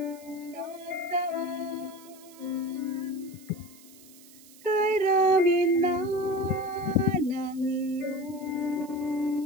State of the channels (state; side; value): noise; right; hiss, 22 dB below the sound